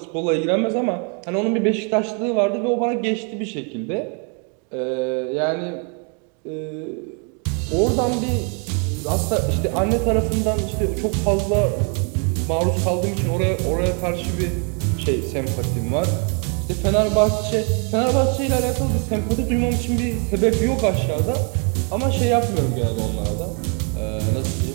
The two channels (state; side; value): quieter; left; 38.5 dB